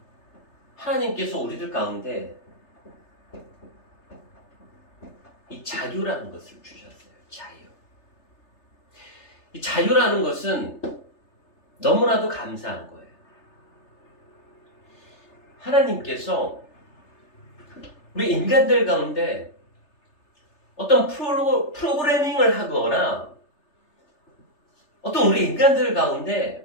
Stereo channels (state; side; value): late; right; 3.3 ms